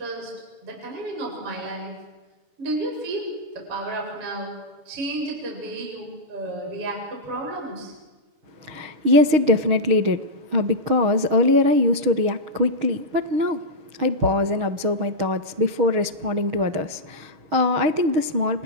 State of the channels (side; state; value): left; late; 6.4 ms